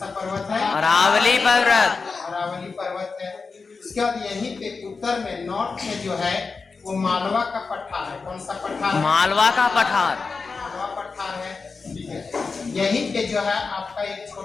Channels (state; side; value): quieter; right; 4.6 dB